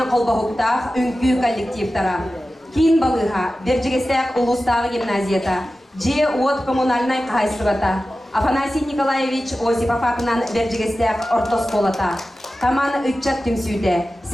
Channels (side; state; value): both; normal; correlation 0.94